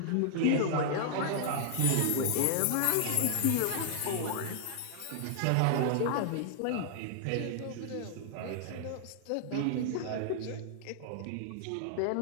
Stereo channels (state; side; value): different; both; correlation -0.01